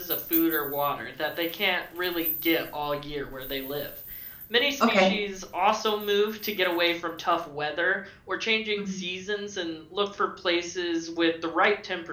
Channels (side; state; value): both; identical; correlation 1.00